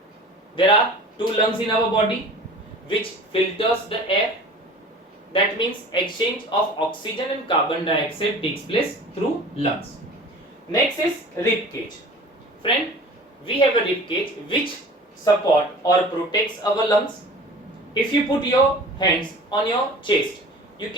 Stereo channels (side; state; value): both; normal; correlation 0.41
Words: There are two lungs in our body which filters the air. That means exchange of oxygen and carbon dioxide takes place through lungs. Next is rib cage. Friend, we have a rib cage which support or protects our lungs. If you put your hands on your chest, you